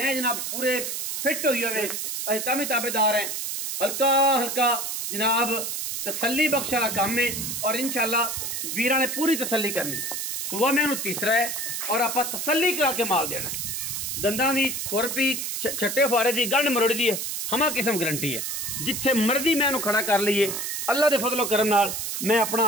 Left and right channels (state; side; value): noise; right; hiss, 3 dB below the sound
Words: जनाब पूरे फिट होई होवे, असीं तां भी ताबेदार हैं। हल्का हल्का जनाब तसल्ली बख्श वाला काम है। और इंशाअल्लाह वीरां ने पूरी तसल्ली करनी। सूआ मैनू तीसरा है और आप तसल्ली करा के माल देना। दंदां दी खुरपी छट्टे फुआरे दी गंढ मरोड़ी दी हमा किस्म गारंटी है। जिथे मर्जी मैनू खड़ा कर लीए अल्लाह दे फजलो करम नाल, मैं अपना